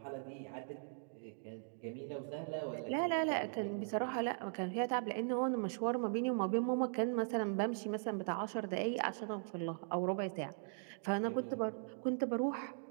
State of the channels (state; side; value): silent; left; digital silence